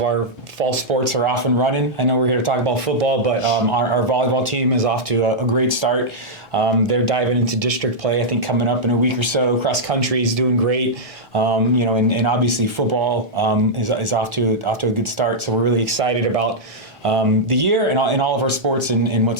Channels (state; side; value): normal; both; correlation -0.07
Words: our fall sports are off and running. I know we're here to talk about football, but our volleyball team is off to a great start. They're diving into district play, I think, coming up in a week or so. Cross country is doing great. And obviously football is off to a good start. So we're really excited about the year and all of our sports and